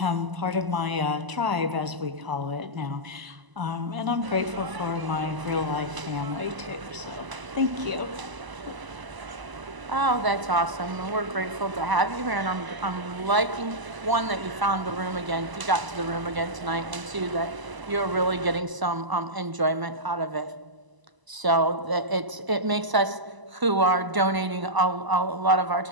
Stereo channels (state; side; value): late; left; 1.0 ms